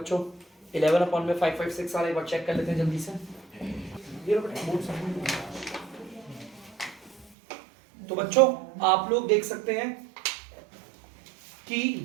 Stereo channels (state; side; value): drops out; left; at 7.3 s